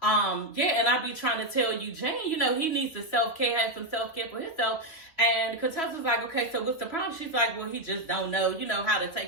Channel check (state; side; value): late; right; 3.1 ms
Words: yeah, and I be trying to tell Eugene, you know, he needs to self-care, have some self-care for himself. And Contessa's like, okay, so what's the problem? She's like, well, he just don't know, you know, how to